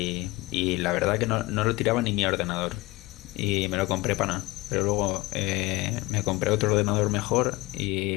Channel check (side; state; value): right; quieter; 21.2 dB